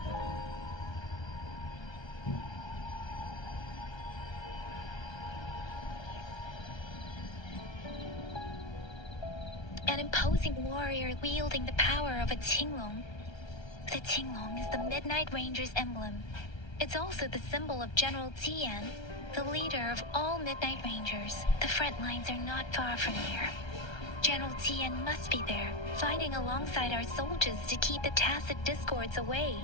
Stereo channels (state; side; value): late; right; 1.3 ms